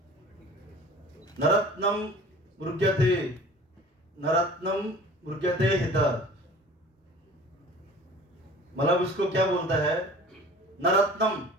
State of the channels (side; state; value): both; normal; correlation 0.44